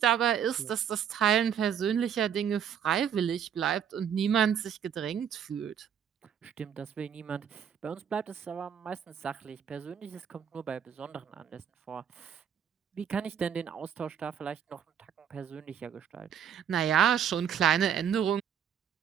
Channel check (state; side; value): quieter; left; 8.5 dB